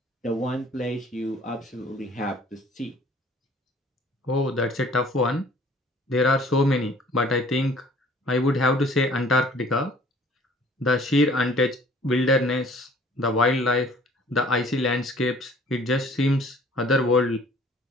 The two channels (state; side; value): normal; both; correlation 0.54